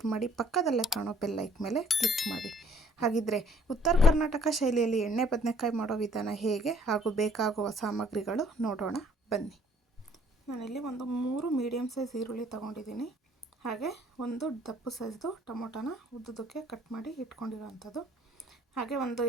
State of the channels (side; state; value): both; normal; correlation 0.60